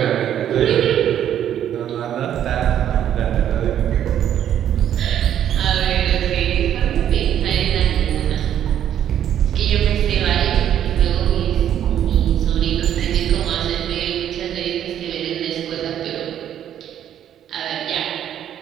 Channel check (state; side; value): quieter; left; 10.3 dB